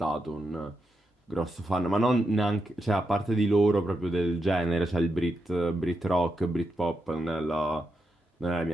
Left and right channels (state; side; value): normal; both; correlation 0.85